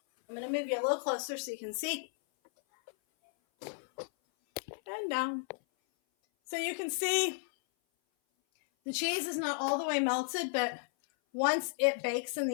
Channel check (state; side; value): silent; right; 55 dB below the other